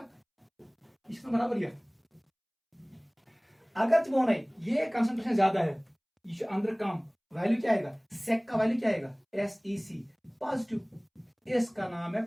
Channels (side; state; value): both; identical; correlation 1.00